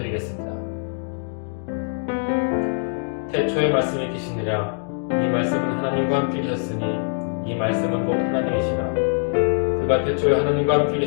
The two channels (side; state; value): right; silent; 60 dB below the other